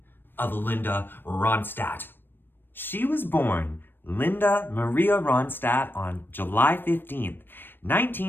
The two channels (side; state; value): right; late; 0.096 ms